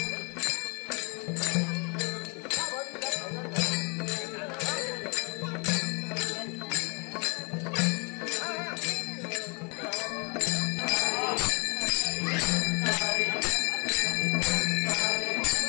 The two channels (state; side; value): quieter; right; 31.9 dB